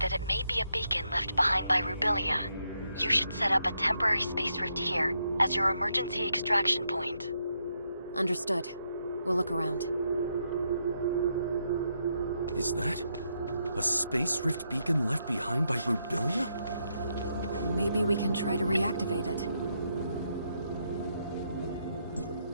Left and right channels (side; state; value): both; inverted; correlation -0.79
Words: it may be a beacon left behind by Rubilia. You should set up a temporary Space Rift here as your emergency extraction point. Understood. We'll look around. Is that a Space Rift beacon left behind by Rubilia? Maybe we can try to reactivate it.